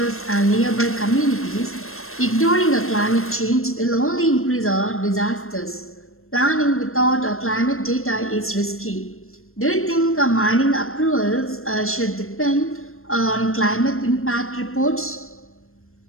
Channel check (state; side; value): late; right; 0.62 ms